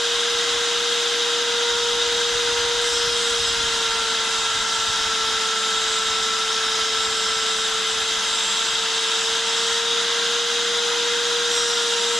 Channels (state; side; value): normal; both; correlation 0.91